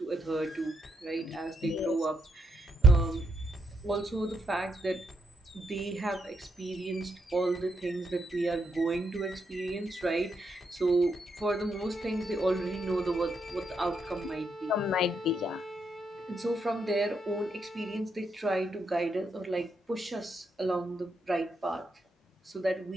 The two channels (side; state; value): both; normal; correlation 0.78